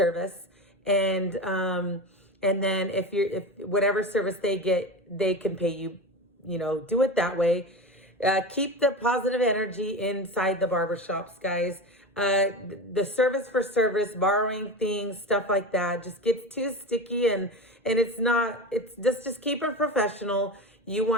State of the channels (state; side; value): normal; both; correlation 0.25